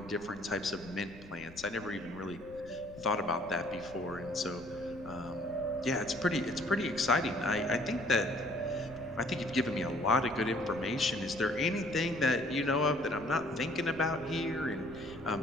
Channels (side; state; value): left; noise; rumble, 19 dB below the sound